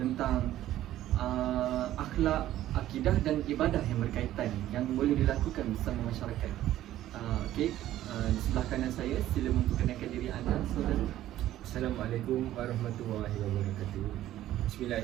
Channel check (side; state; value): left; quieter; 13.5 dB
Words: akhlak, akidah dan ibadah yang berkaitan yang boleh dilakukan bersama masyarakat. Di sebelah kanan saya, sila memperkenalkan diri anda, saudara. Assalamualaikum warahmatullahi wabarakatuh.